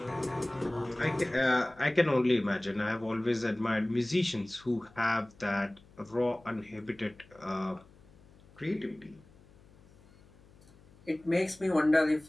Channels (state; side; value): noise; left; hum, 26 dB below the sound